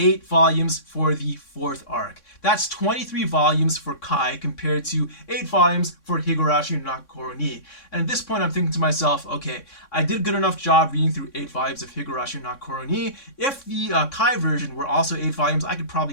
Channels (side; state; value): right; late; 3.6 ms